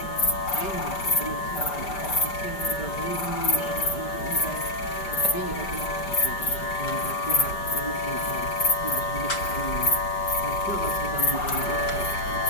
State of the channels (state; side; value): late; right; 5.1 ms